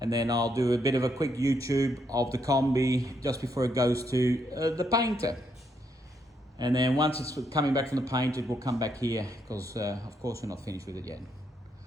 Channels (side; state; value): both; normal; correlation 0.76